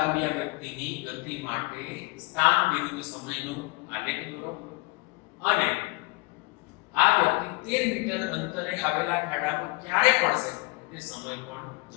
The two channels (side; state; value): right; quieter; 25.6 dB